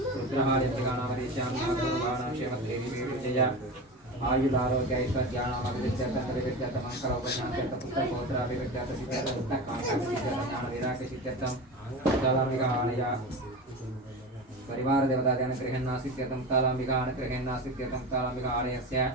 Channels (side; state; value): both; normal; correlation 0.27